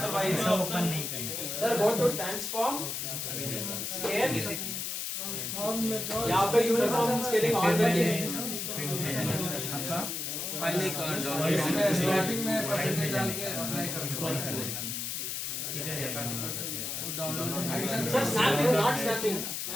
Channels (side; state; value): left; noise; hiss, 3 dB below the sound